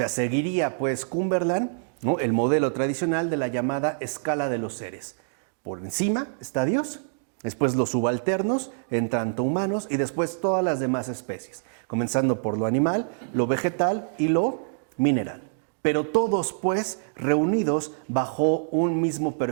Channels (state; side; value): silent; left; digital silence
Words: seguiría pues Cumberland, ¿no?, el modelo tradicional de la llamada escala de los seres. Por encima está Dios, después los subalternos, en tanto humanos, y después todas las demás especies, comenzando por lo animal, lo vegetal y lo mineral. Pero todos pues reunidos bajo un mismo